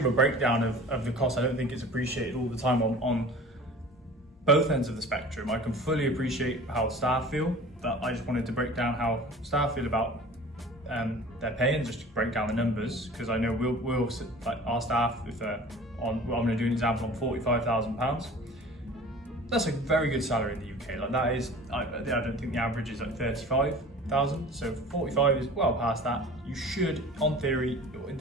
give a breakdown of the cost. I don't think it's appreciated all the time on both ends of the spectrum. I can fully appreciate how staff feel, but I just wanted to break down how staff feel about their pay and just to break down the numbers, because I know we'll like our staff, if they're on, well, I'm going to do an example on £45,000. That's a very good salary in the UK. Like that is, I don't think the average is like 35,000. So 45 is well past that. You should, in theory,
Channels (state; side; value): normal; both; correlation 0.42